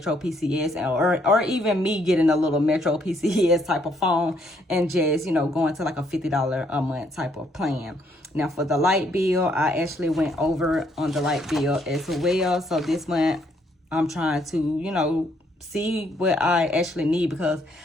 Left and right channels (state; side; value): normal; both; correlation 0.70